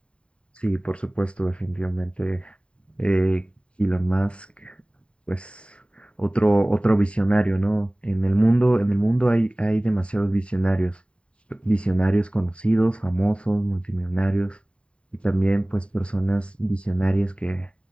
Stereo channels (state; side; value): late; right; 0.056 ms